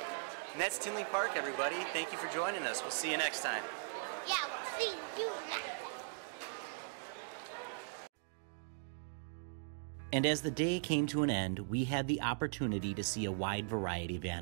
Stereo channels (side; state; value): left; silent; digital silence